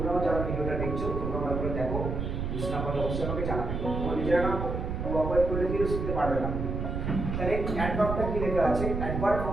যারা ভিডিওটা দেখছো তোমরা ভালো করে দেখো, বুঝতে না পারলে অবশ্যই আমাকে জানাবে। তোমরা নিজেরা না কোঅপারেট করলে কিন্তু শিখতে পারবে না। তাহলে অ্যাডভার্বটা কি লেখা আছে? অ্যাডভার্ব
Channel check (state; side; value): noise; right; rumble, 3 dB below the sound